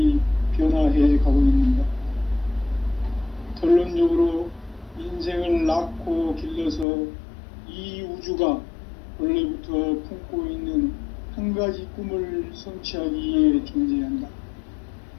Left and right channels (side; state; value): right; drops out; at 6.9 s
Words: 변화해 가고 있는가? 결론적으로 인생을 낳고 길러서 이 우주가 원래부터 품고 있는 한 가지 꿈을 성취하기 위해 존재한다.